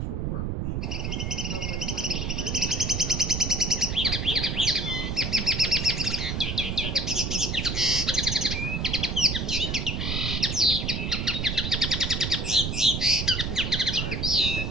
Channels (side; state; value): right; noise; rumble, 2 dB below the sound